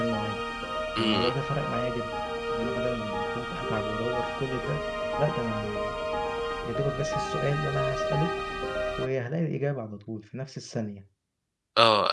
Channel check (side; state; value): both; identical; correlation 1.00